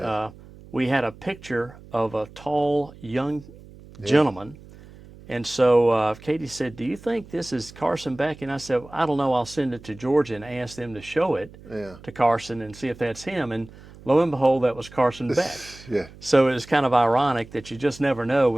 we had a picture of a tall, young gentleman, and so Katie said, do you think this is Carson Beck? And I said, I don't know, I'll send it to Georgia and ask them to show it to Carson and see if that's him, and lo and behold, that was Carson Beck. So it was kind of ironic that you just never know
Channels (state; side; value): noise; right; hum, 20 dB below the sound